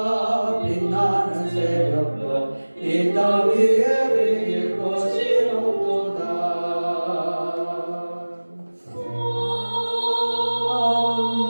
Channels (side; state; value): both; inverted; correlation -1.00